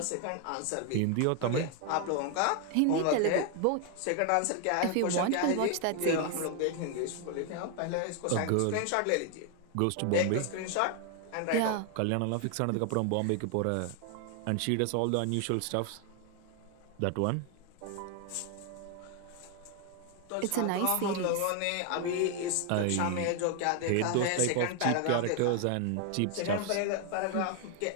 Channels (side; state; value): both; different; correlation 0.01